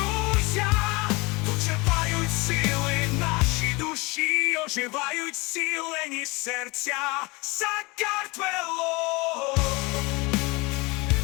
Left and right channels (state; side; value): quieter; right; 25.3 dB